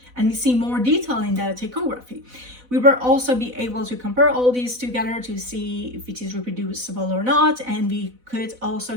and we see more detail in the ptychography. We will also be able to compare all these together to see if it is reproducible or not, and we could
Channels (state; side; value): late; left; 4.0 ms